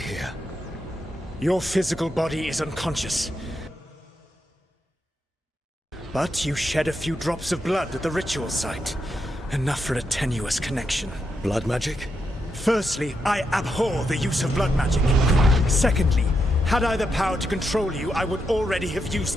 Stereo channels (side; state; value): both; normal; correlation 0.83